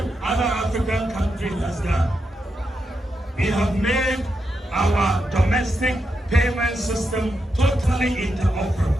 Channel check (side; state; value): both; normal; correlation 0.85